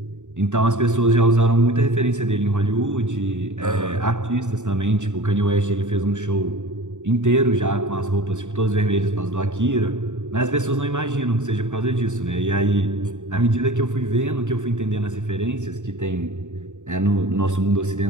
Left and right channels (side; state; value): left; late; 0.85 ms